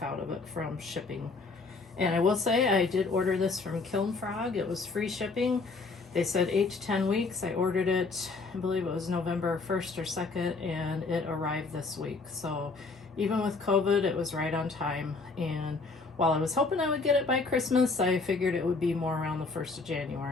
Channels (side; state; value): right; quieter; 4.0 dB